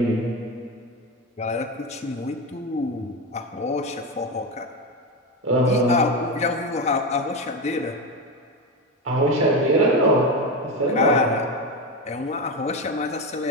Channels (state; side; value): normal; both; correlation 0.16